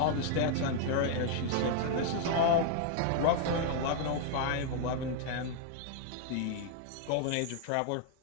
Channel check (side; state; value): both; different; correlation 0.00